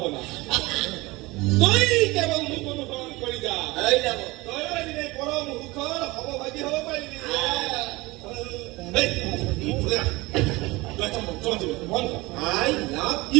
তই কেৱল মোক অনুসৰণ কৰি যা তই এদিনে পৰম সুখৰ সমভাগী হ'ব পাৰিবি I love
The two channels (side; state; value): left; quieter; 22.0 dB